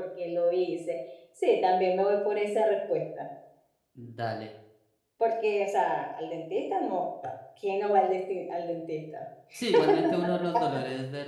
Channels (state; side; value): identical; both; correlation 1.00